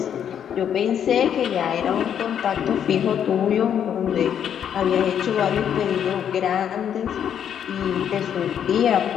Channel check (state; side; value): quieter; right; 8.9 dB